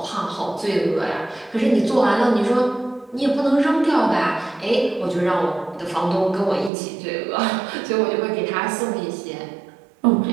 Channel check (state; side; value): drops out; left; at 6.7 s